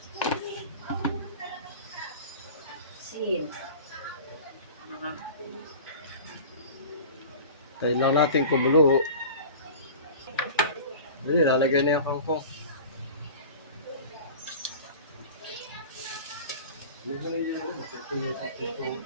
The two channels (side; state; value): both; inverted; correlation -0.38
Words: Asin. Tayo lang natin kumulo. Hindi, lalagay na yung kangkong.